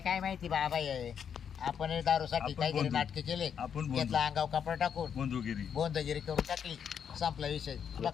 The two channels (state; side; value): quieter; right; 7.8 dB